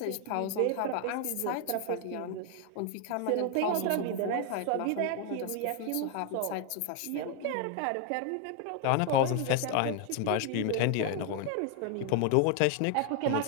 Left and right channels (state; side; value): different; both; correlation 0.00